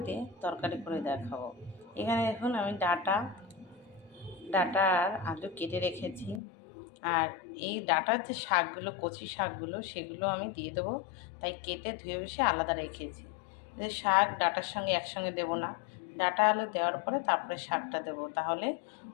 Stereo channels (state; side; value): drops out; right; at 6.4 s